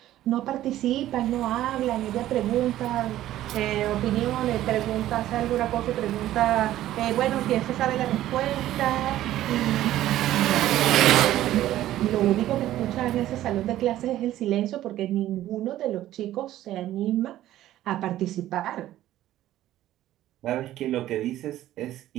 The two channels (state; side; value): quieter; left; 13.7 dB